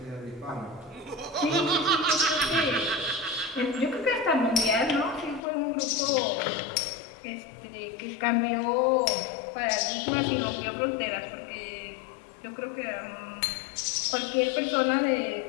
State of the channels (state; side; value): drops out; right; at 5.4 s